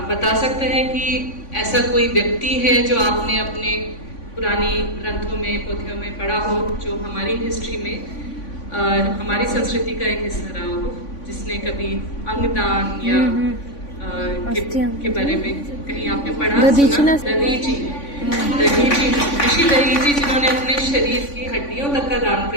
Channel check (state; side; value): late; right; 3.5 ms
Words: सकता है कि ऐसा कोई व्यक्ति है जो आपने अपने पुरानी ग्रंथों में, पोथियों में पढ़ा हो, जो हमारी हिस्ट्री में हमारी संस्कृति का एक हिस्सा रहा हो, जिसने कभी अंगदान या के बारे में कहीं आपने पढ़ा सुना? दधीची, ऋषि दधीची जिन्होंने अपने शरीर की हड्डियों तक का दान